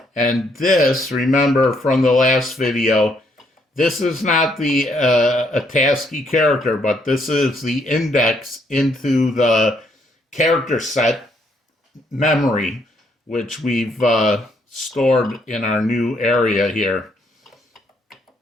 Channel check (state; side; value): normal; both; correlation 0.71